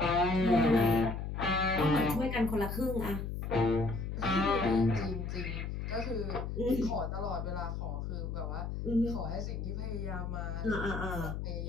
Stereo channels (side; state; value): left; noise; hum, 4 dB below the sound